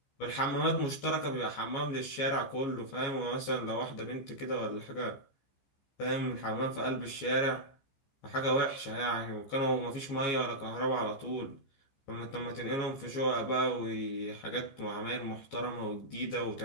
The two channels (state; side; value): late; right; 15 ms